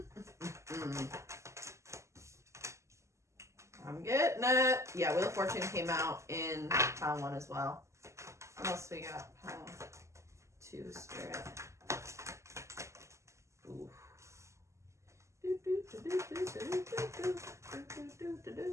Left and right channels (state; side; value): late; left; 0.14 ms